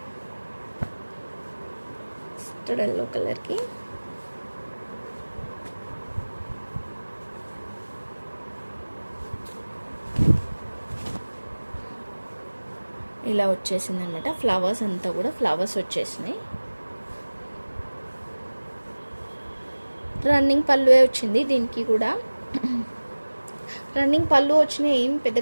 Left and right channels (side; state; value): both; inverted; correlation -1.00